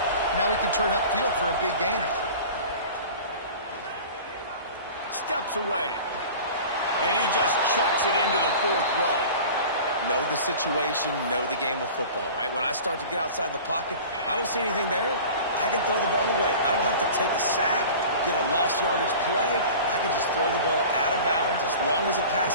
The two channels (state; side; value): inverted; both; correlation -0.39